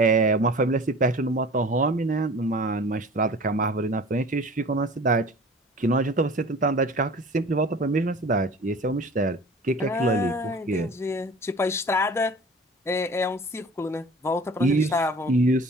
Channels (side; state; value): both; normal; correlation 0.43